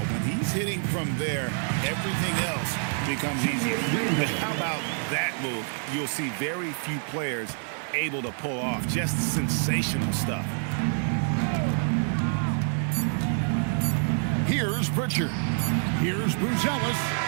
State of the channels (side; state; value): left; silent; 60 dB below the other